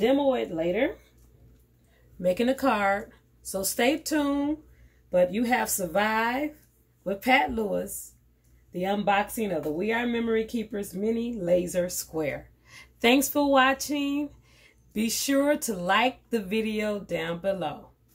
it later, making a card. So stay tuned. But you have survived with Pat Lewis, the unboxing of the We Are Memory Keepers Mini Laser Square. Thanks for watching. Be sure to like the video down below.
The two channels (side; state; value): both; identical; correlation 1.00